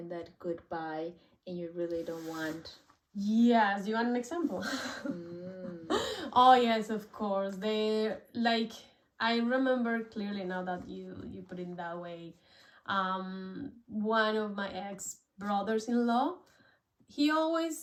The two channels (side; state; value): both; identical; correlation 1.00